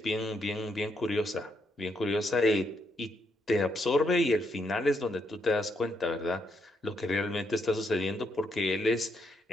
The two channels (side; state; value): both; normal; correlation 0.77